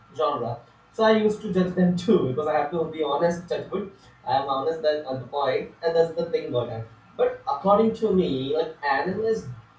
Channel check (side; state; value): both; identical; correlation 1.00